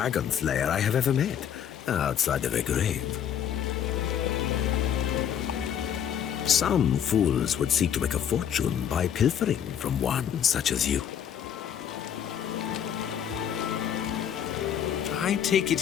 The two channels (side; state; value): right; quieter; 9.0 dB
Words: slayer I have ever met, outside of a grave. Some fools would seek to make a fortune by pilfering from one such as you. I take it